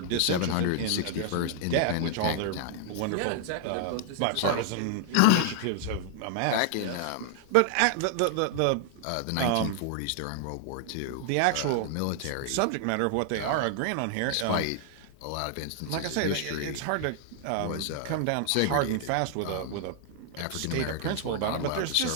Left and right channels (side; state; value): both; different; correlation 0.00